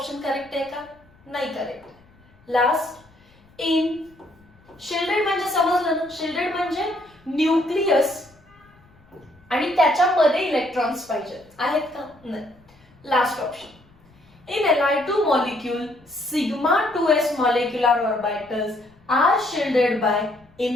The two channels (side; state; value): left; noise; rumble, 30 dB below the sound